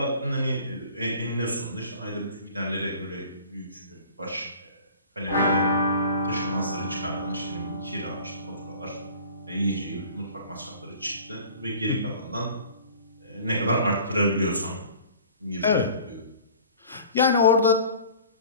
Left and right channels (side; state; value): both; inverted; correlation -0.46